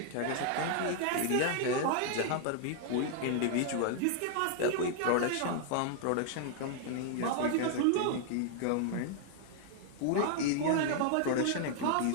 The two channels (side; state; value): both; different; correlation 0.00